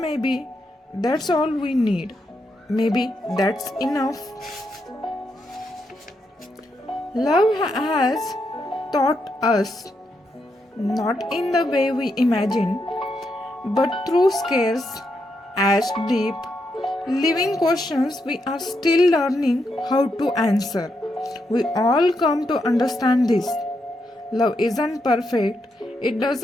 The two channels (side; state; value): both; normal; correlation 0.82